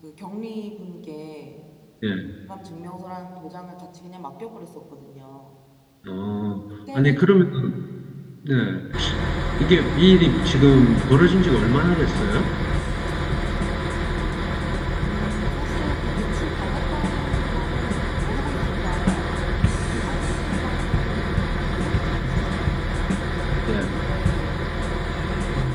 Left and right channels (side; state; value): both; identical; correlation 1.00